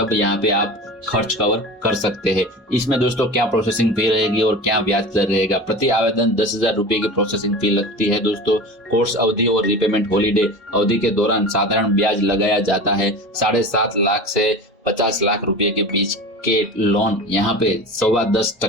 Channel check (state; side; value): normal; both; correlation 0.33